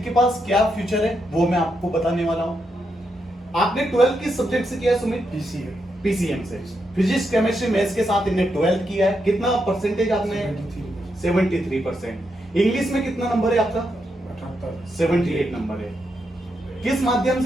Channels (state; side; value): normal; both; correlation 0.82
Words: के पास क्या फ्यूचर है वो मैं आपको बताने वाला हूं। आपने 12th किस सब्जेक्ट से किया है सुमित? पीसीएम से। फिजिक्स, केमिस्ट्री, मैथ्स के साथ इन्हें 12th किया है। कितना परसेंटेज आपने? 73%। इंग्लिश में कितना नंबर है आपका? 78 नंबर है। किस माध्यम